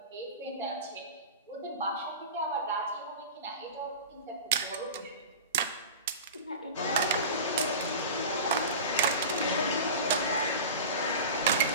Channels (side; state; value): both; inverted; correlation -0.30